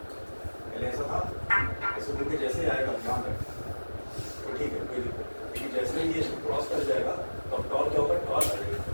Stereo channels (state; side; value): inverted; both; correlation -1.00